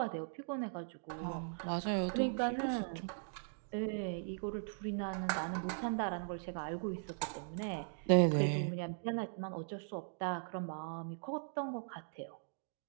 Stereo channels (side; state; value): left; silent; digital silence